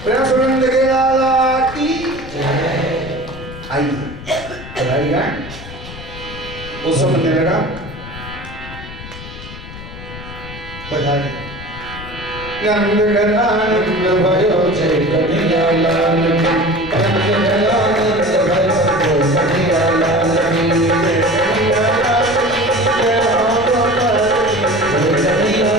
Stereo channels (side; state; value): left; noise; rumble, 13 dB below the sound